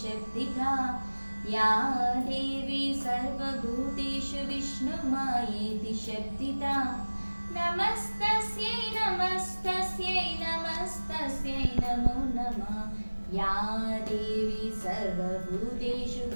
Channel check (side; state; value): both; inverted; correlation -1.00